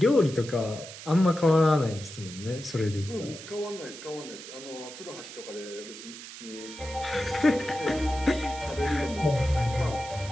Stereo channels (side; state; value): right; noise; hiss, 13 dB below the sound